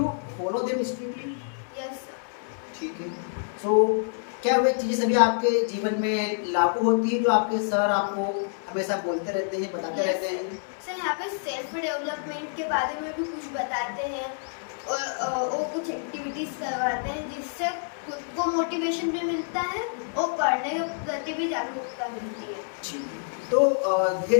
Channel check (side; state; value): right; silent; digital silence